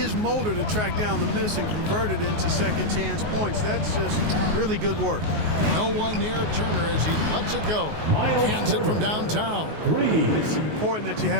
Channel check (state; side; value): late; left; 19 ms